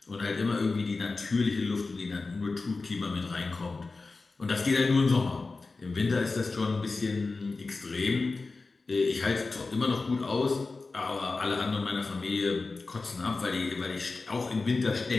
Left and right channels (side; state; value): right; quieter; 3.8 dB